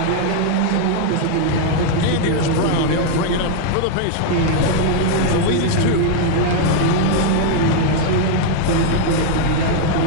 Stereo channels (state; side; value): different; both; correlation 0.00